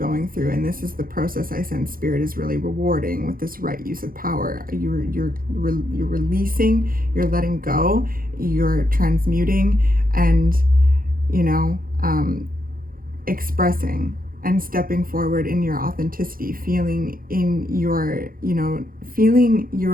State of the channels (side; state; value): left; late; 0.42 ms